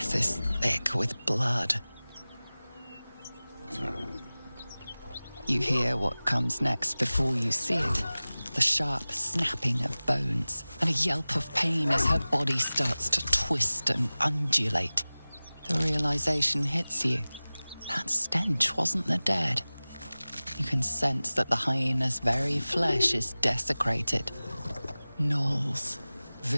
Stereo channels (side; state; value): both; inverted; correlation -0.99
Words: is thick with blood. You hear what comes next before you see it. The sharp snapping of bones, and a yelp of pain as her body starts to twist and undulate. The realization hits you. That stench wasn't the dead. You can sense that the hyena's very flesh is desecrated. Gnolls,